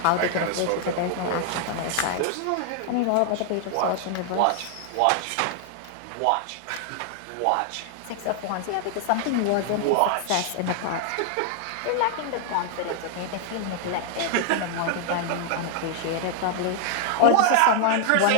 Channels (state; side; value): different; both; correlation 0.00